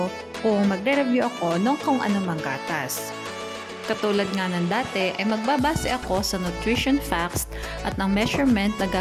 kung magre-review ako ng kung anumang gatas. Katulad nga ng dati ay magbabase ako sa nutrition facts at ang measurement na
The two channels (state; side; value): identical; both; correlation 1.00